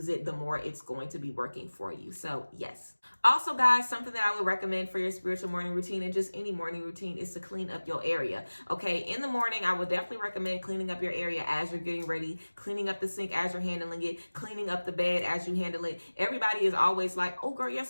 it, the more it's going to be working for you. So yes. Also, guys, something that I would recommend for your spiritual morning routine, and just any morning routine, is to clean up your area. Okay, in the morning, I would definitely recommend cleaning up your area as you're getting ready, cleaning up the sink as you're handling it, cleaning up the bed as you handle it. Everybody is always like, oh girl, your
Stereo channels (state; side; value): inverted; both; correlation -1.00